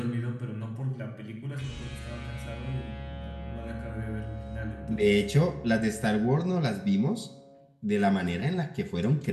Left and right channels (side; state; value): both; identical; correlation 1.00